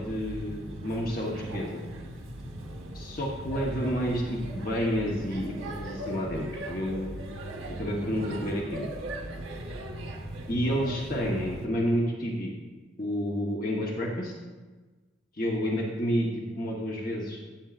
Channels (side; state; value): both; normal; correlation 0.68